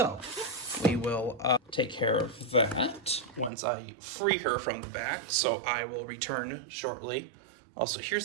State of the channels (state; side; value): drops out; left; at 3.5 s